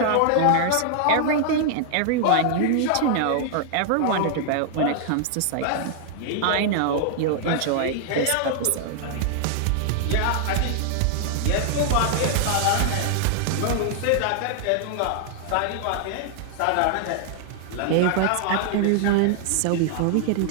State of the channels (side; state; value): both; different; correlation -0.01